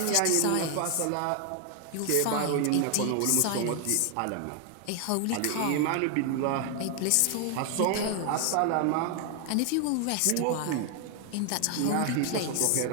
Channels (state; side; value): different; both; correlation 0.00